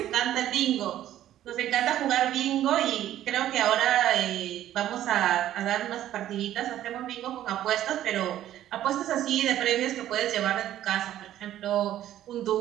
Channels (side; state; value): left; quieter; 12.5 dB